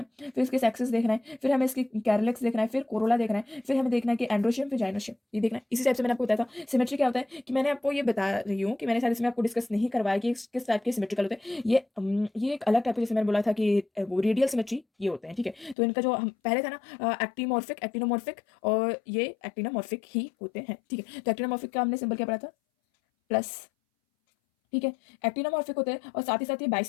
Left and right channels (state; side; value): drops out; right; at 15.8 s